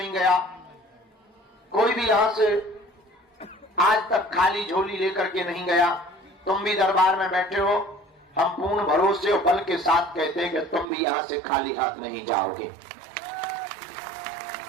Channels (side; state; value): left; drops out; at 10.9 s